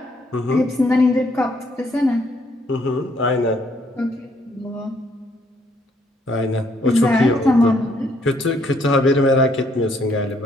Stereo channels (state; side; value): normal; both; correlation 0.69